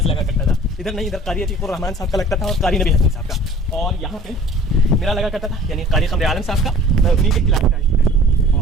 लगा करता था, इधर नहीं, इधर कारी अतीकुर रहमान साहब का लगता था और कारी नबी हसन साहब का। और यहाँ पे मेरा लगा करता था, यानी कारी कमर आलम साहब का, मैं उन्हीं के क्लास का स्टूडेंट।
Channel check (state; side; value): normal; both; correlation 0.48